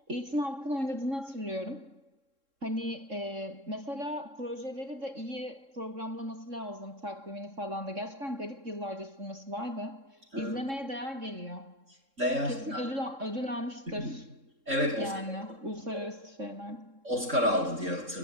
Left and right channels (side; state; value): left; late; 3.7 ms